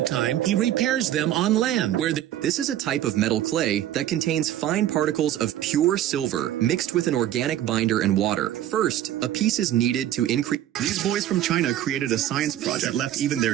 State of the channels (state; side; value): quieter; left; 12.3 dB